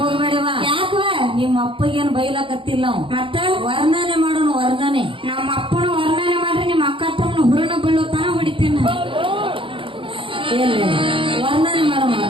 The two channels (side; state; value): left; late; 0.25 ms